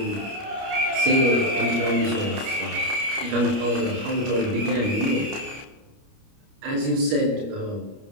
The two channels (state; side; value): late; left; 29 ms